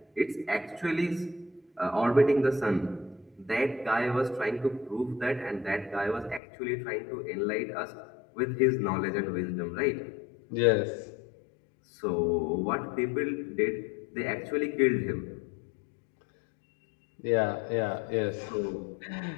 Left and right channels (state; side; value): drops out; right; at 6.4 s